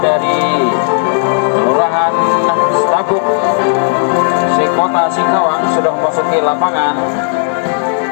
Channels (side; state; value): right; silent; 57 dB below the other